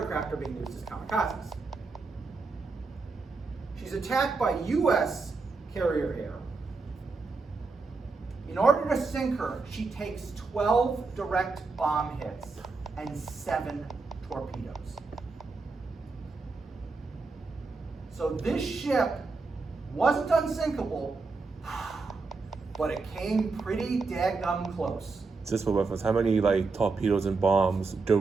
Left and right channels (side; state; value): left; quieter; 4.1 dB